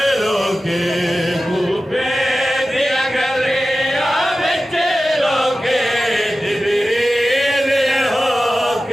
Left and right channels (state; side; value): normal; both; correlation 0.95